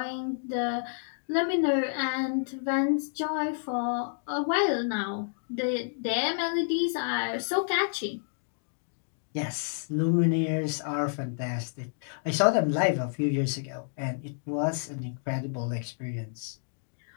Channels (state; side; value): silent; right; digital silence